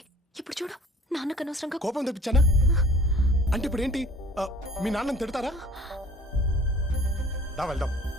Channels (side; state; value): both; normal; correlation 0.49